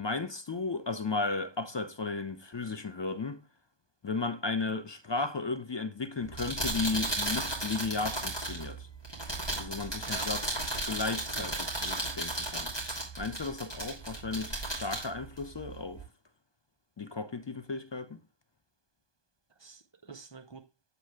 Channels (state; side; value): late; right; 1.2 ms